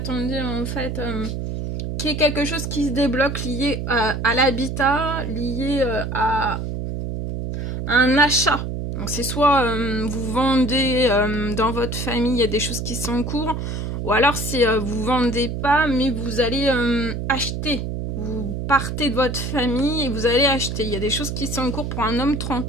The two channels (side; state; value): right; noise; hum, 4 dB below the sound